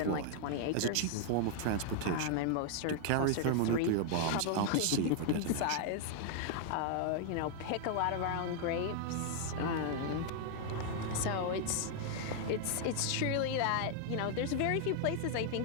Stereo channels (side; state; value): both; different; correlation 0.00